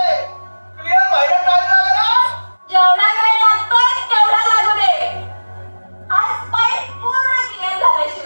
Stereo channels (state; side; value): inverted; both; correlation -1.00